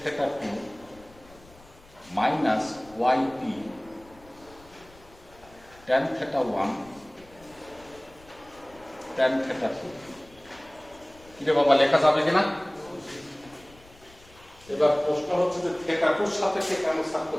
theta 2 minus y p tan theta 1 tan theta 2। কিরে বাবা, লেখা যাবে কিনা? এবার প্রশ্ন হচ্ছে যে থেটা 2 এর সাপেক্ষে কেন সাব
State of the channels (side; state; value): left; noise; rumble, 25 dB below the sound